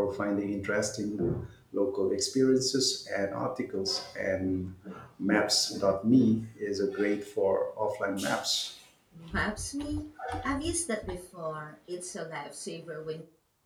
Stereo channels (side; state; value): both; identical; correlation 1.00